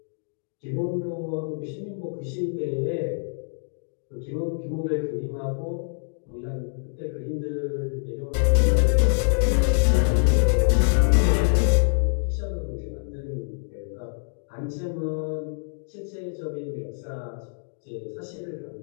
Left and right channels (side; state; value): right; silent; digital silence